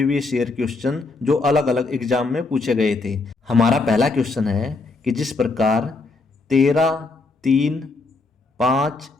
ईयर क्वेश्चन जो अलग अलग एग्जाम में पूछे गए थे। हमारा पहला क्वेश्चन है कि जिस प्रकार 13, 3, 5,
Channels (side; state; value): right; quieter; 3.7 dB